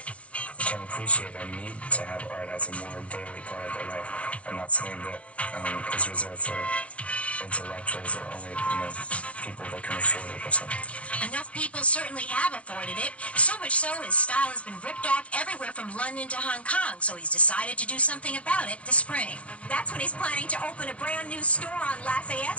can appreciate and need to have art as a more daily part of their life and not something that is reserved for intellectuals or only, people that can afford it or something. Enough people certainly have afforded it, so much so his style has been ripped off everywhere from London to Hong Kong, so he's decided to do something about it this spring. That's when he's planning to open a brand new store on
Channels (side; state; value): right; late; 0.063 ms